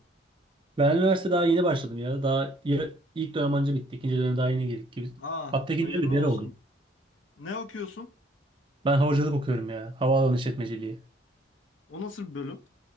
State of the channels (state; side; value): normal; both; correlation 0.63